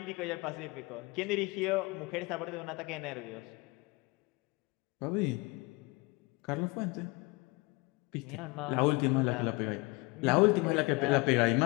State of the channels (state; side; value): quieter; right; 25.7 dB